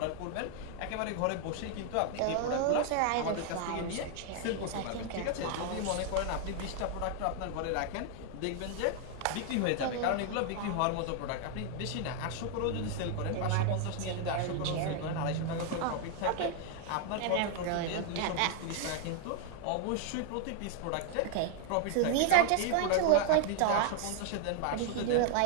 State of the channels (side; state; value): both; different; correlation 0.00